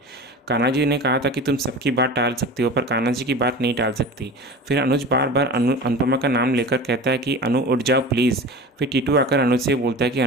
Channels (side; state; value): both; normal; correlation 0.34